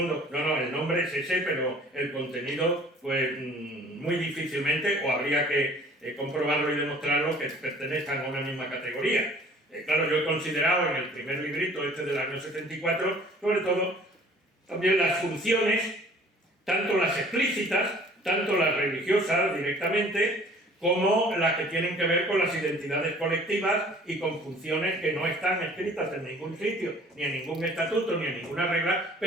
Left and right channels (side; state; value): both; normal; correlation 0.52